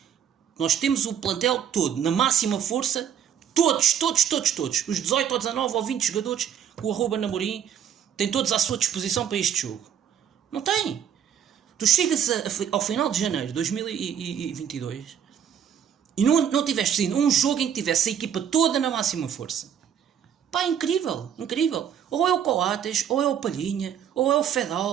nós temos o plantel todo na máxima força, todos, os 18 ou 19 ou 20 jogadores que o @Namorim tem todos à sua disposição para este jogo. Não tem. Tu chegas ao final de janeiro de 2022 e não tiveste ainda um jogo em que tivesse a equipa toda na máxima força. Incrível. Ou é o Coates, ou é o Palhinha, ou é o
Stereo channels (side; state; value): left; quieter; 8.7 dB